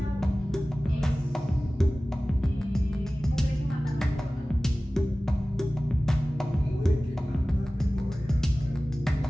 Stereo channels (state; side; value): normal; both; correlation 0.97